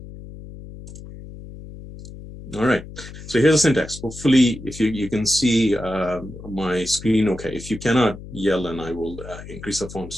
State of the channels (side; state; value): left; noise; hum, 14 dB below the sound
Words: All right, so here's the syntax. Hopefully, if you can see my screen okay. If you cannot, yell and I will increase the font